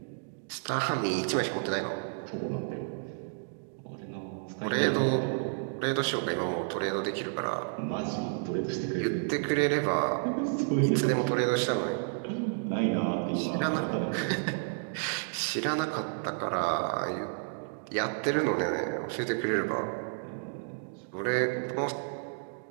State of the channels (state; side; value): silent; left; digital silence